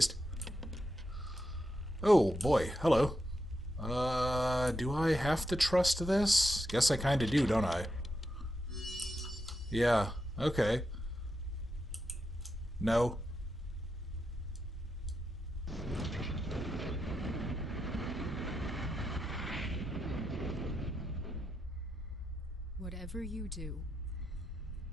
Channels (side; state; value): both; normal; correlation 0.86